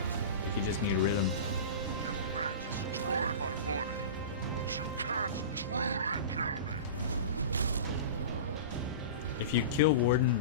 Like you just need rhythm. You may destroy my body, but you can't truly kill me. If you kill Warden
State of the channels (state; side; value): inverted; both; correlation -0.31